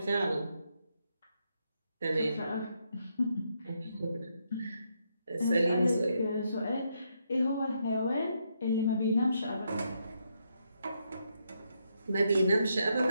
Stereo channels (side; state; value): both; inverted; correlation -0.78